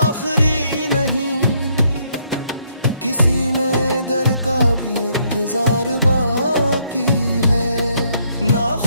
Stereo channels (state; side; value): inverted; both; correlation -0.71